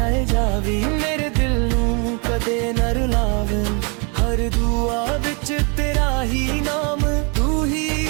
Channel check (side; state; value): left; quieter; 34.0 dB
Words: जावी, मेरे दिल नूं कदे न रुलावे। हर दुआ विच तेरा ही नाम, तू ही